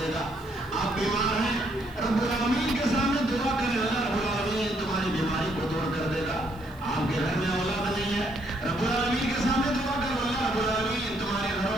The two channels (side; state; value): right; noise; hiss, 27 dB below the sound